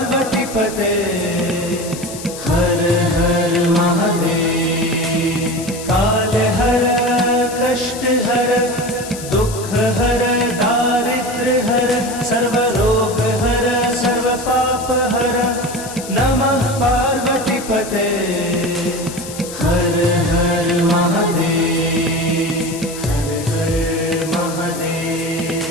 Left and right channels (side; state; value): left; noise; hiss, 12 dB below the sound